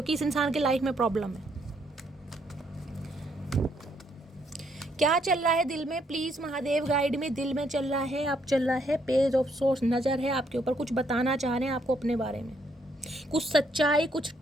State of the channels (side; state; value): both; normal; correlation 0.72